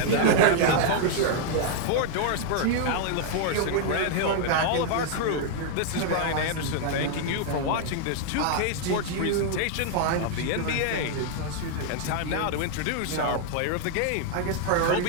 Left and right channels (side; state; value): both; different; correlation 0.00